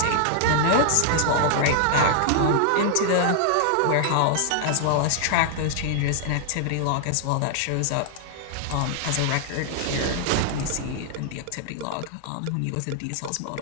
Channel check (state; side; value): different; both; correlation 0.00